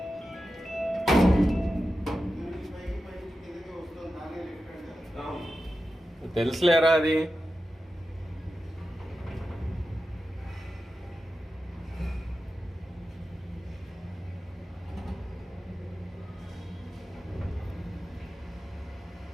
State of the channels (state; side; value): normal; both; correlation 0.91